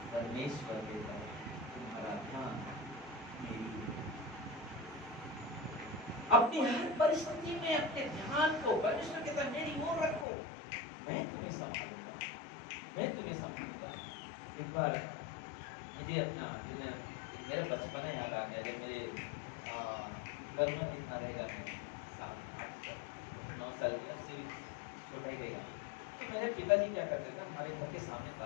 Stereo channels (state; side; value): drops out; right; at 10.2 s